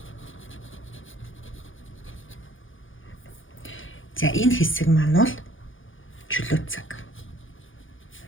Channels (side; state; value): right; late; 0.58 ms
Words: За энэ хэсэг маань бол чөлөө цаг.